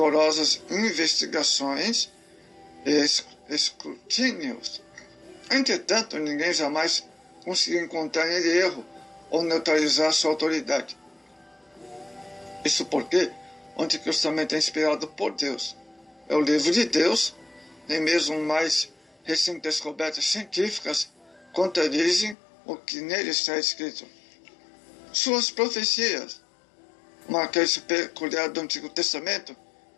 investigações e escrutínios. Entretanto, ninguém jamais conseguiu encontrar nele erro ou neutralizar sua autoridade. Isso porque o Antigo Testamento é inspirado por Deus. É o livro de Deus, nem mesmo mais recentes descobertas científicas contradizem o que nele está escrito. Suas profecias, uma característica peculiar do Antigo Testamento,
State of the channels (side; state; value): right; drops out; at 22.4 s